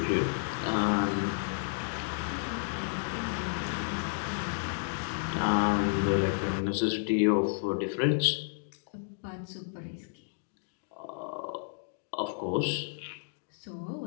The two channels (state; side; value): silent; right; digital silence